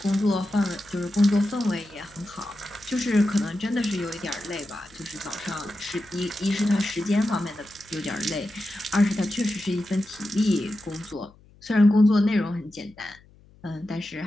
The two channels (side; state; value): left; noise; hum, 27 dB below the sound